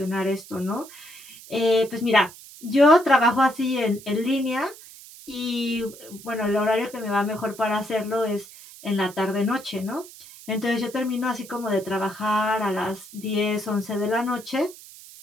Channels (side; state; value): right; noise; hiss, 18 dB below the sound